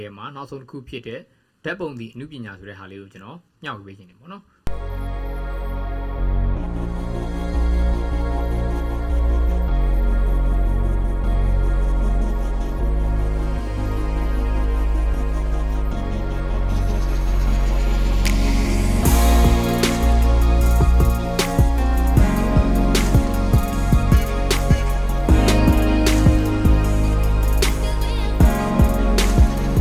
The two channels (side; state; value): both; identical; correlation 1.00